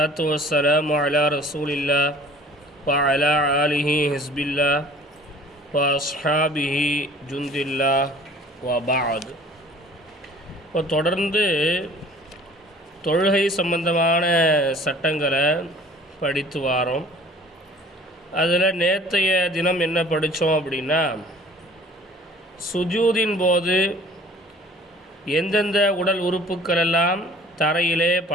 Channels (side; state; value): both; normal; correlation 0.49